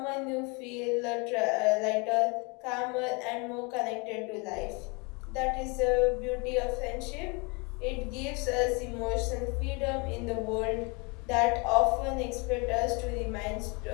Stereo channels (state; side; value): quieter; right; 30.1 dB